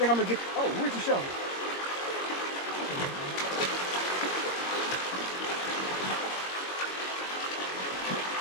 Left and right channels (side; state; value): right; late; 21 ms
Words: I'm gonna get, oh, where's the shovel?